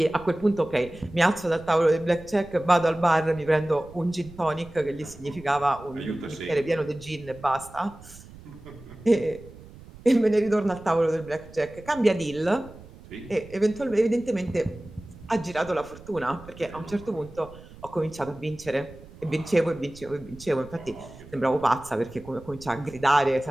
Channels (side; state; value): right; noise; rumble, 19 dB below the sound